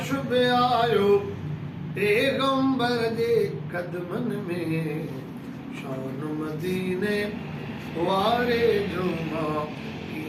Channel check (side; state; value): both; identical; correlation 1.00